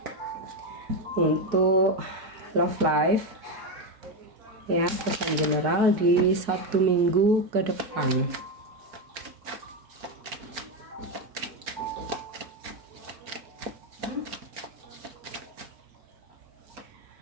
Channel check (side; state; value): left; late; 4.6 ms